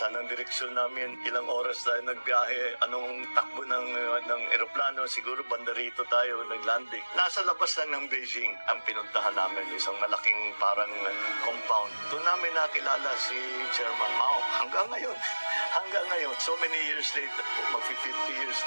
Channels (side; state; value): both; inverted; correlation -1.00